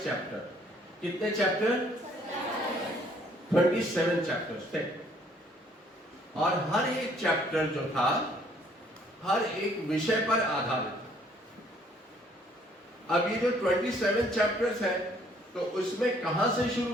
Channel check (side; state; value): both; normal; correlation 0.62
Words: चैप्टर। कितने चैप्टर? 27 चैप्टर्स थे और हर एक चैप्टर जो था हर एक विषय पर आधारित था। अब ये जो 27 चैप्टर्स हैं, तो उसमें कहां से